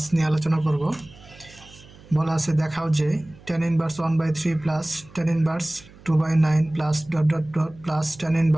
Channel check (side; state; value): right; noise; hum, 23 dB below the sound